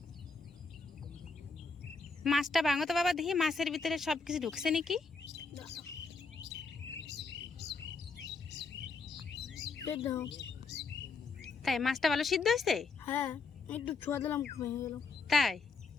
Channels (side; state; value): right; quieter; 4.3 dB